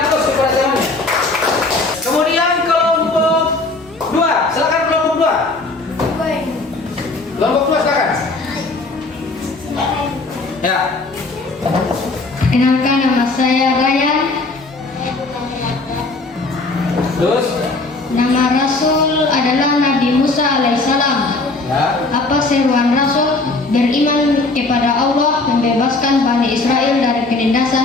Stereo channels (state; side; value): quieter; right; 3.3 dB